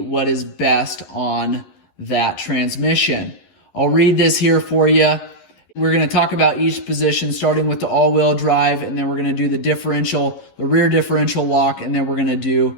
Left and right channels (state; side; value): late; right; 11 ms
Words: is best on that transmission. I'll read this here for you. We're going to talk about each position, starting with the all-wheel drive, and then we're going to do the differential, the rear differential lock, and then we're going to do